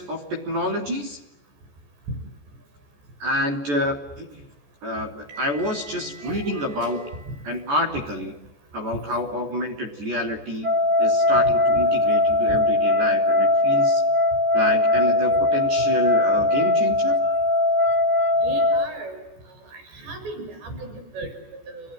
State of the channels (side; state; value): left; late; 14 ms